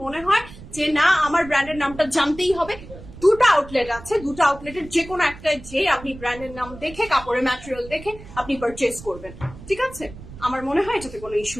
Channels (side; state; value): right; noise; rumble, 16 dB below the sound